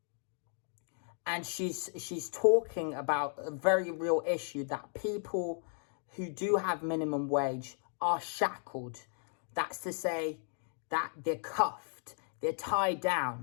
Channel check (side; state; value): right; silent; 54 dB below the other